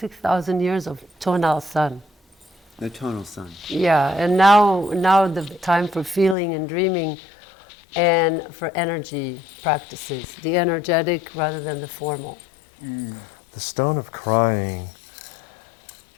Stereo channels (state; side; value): drops out; right; at 6.4 s